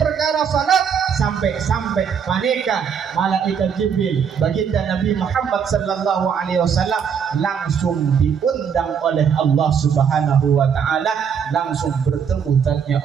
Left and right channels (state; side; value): quieter; left; 7.2 dB